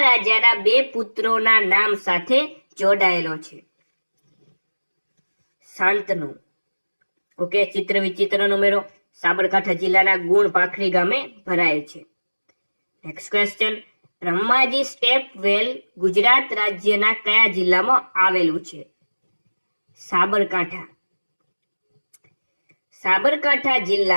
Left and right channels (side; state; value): both; inverted; correlation -1.00